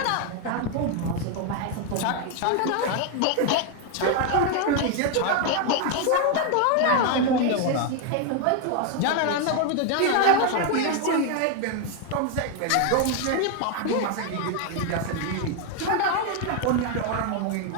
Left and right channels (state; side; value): different; both; correlation 0.01